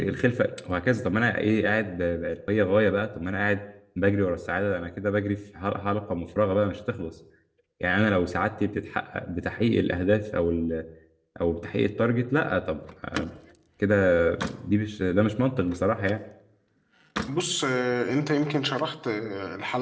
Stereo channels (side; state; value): both; identical; correlation 1.00